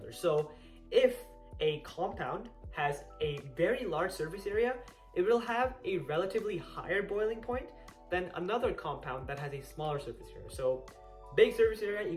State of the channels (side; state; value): both; identical; correlation 1.00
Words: So if a compound has a very large surface area, it will have a relatively higher boiling point than another compound that has a smaller surface area. So big surface area